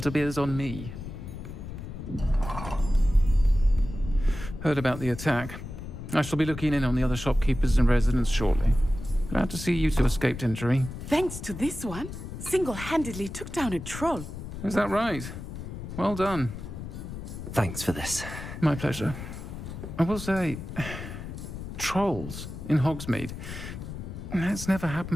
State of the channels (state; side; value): noise; left; rumble, 9 dB below the sound